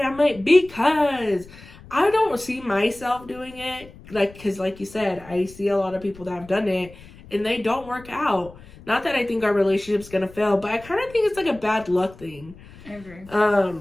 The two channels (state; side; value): noise; left; rumble, 20 dB below the sound